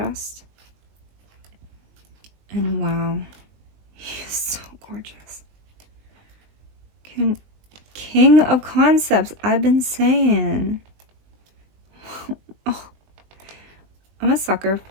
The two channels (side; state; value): left; late; 20 ms